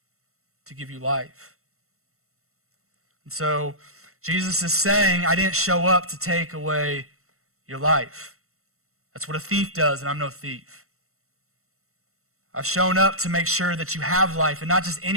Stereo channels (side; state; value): left; late; 0.63 ms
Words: to give you life. And so Jesus is saying, I didn't show up to take away your life. That's what a thief does, and I'm no thief. I've shown up to make sure that you have life, and not just